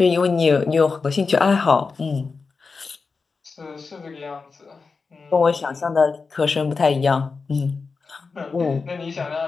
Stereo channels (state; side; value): quieter; right; 4.6 dB